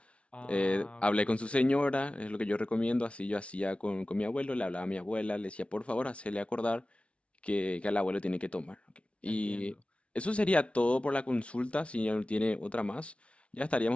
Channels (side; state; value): right; late; 0.061 ms